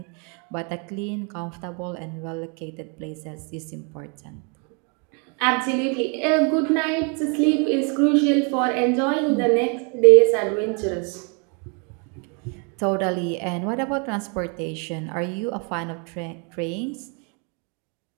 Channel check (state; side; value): quieter; left; 36.2 dB